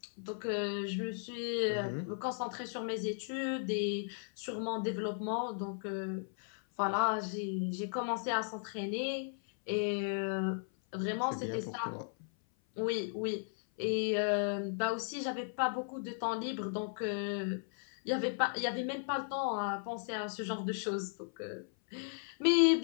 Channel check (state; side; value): silent; right; 54 dB below the other